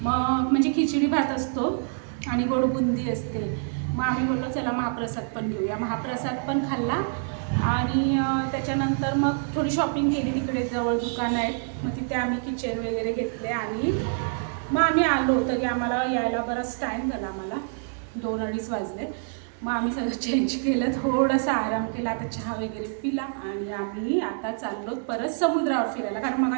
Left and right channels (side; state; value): left; silent; 61 dB below the other